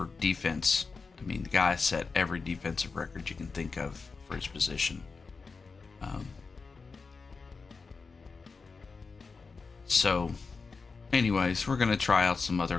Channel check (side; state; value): right; quieter; 4.6 dB